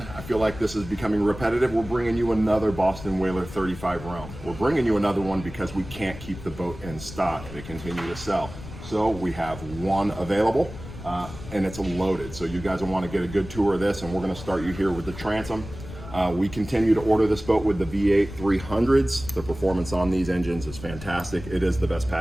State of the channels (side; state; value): left; noise; rumble, 13 dB below the sound